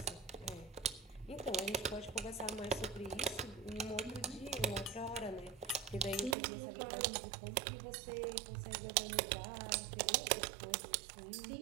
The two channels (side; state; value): left; drops out; at 6.4 s